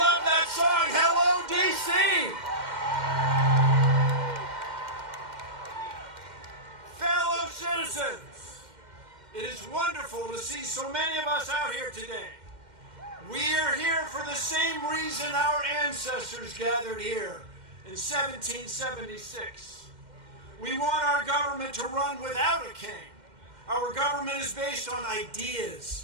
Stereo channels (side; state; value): left; late; 2.1 ms